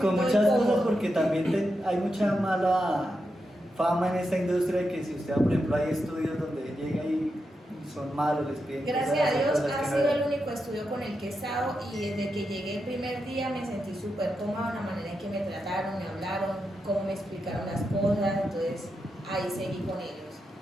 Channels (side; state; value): both; normal; correlation 0.87